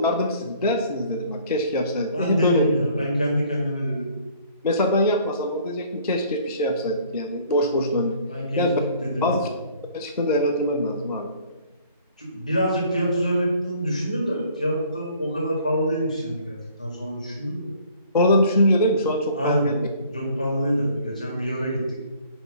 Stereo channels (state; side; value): inverted; both; correlation -0.56